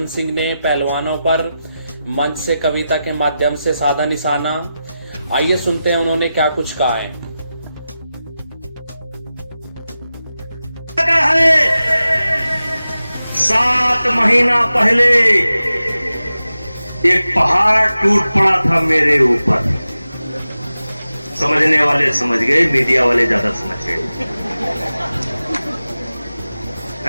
सिंह ने पहलवानों पर मंच से कविता के माध्यम से साधा निशाना। आइए सुनते हैं उन्होंने क्या कुछ कहा है। 7 महीना पहले एक पहाड़ टूट पड़ा था मेरे ऊपर। समझने वाले समझ गए, मीडिया वाले ज्यादा समझ गए।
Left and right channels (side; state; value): both; inverted; correlation -0.93